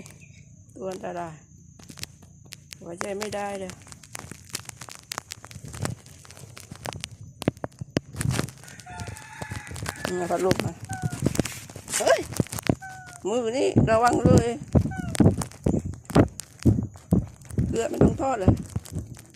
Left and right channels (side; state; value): both; identical; correlation 1.00